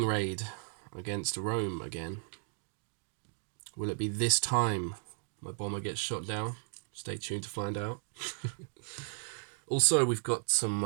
raid against Rome again. Will it be this time my bomber gets shot down? Stay tuned to find out. Also, we've got some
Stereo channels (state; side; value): silent; left; 54 dB below the other